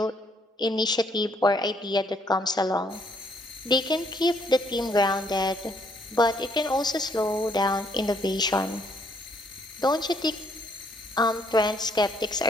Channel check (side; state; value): both; normal; correlation 0.68